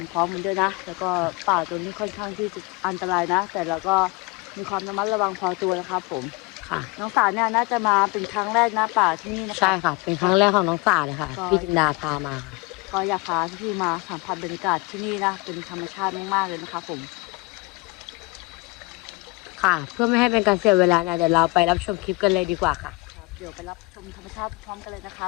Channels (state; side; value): quieter; right; 26.3 dB